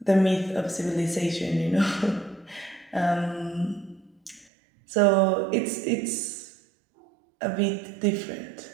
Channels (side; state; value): left; drops out; at 4.5 s